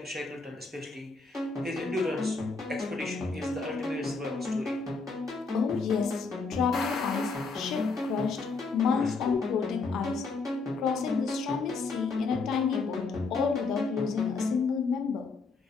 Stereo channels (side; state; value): right; quieter; 4.3 dB